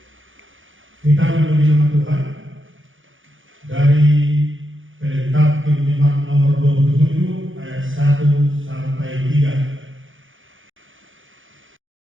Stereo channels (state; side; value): late; left; 0.57 ms